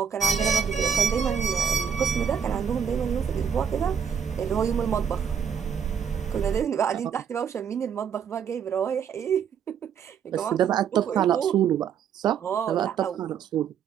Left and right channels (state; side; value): quieter; left; 7.6 dB